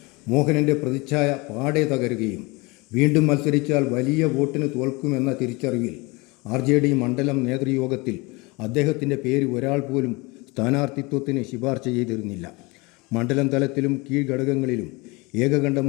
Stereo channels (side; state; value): right; quieter; 25.9 dB